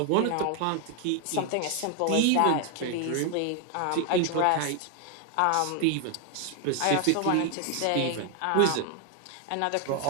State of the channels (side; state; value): both; different; correlation 0.00